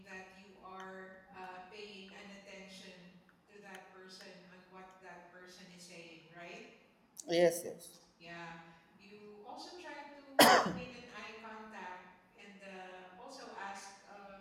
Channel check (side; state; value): both; identical; correlation 1.00